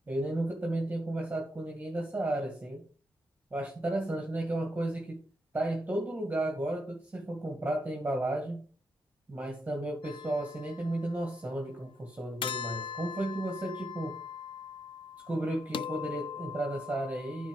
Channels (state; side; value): normal; both; correlation 0.81